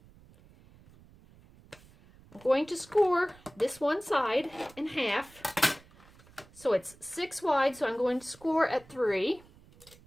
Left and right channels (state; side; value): noise; right; rumble, 25 dB below the sound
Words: I'm going to score this one side in half. So it's 6 wide, so I'm going to score at 3.